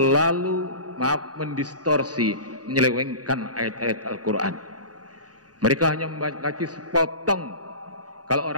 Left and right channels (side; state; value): left; late; 0.68 ms